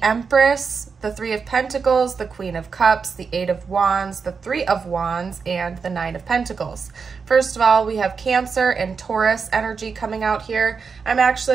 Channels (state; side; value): quieter; left; 5.4 dB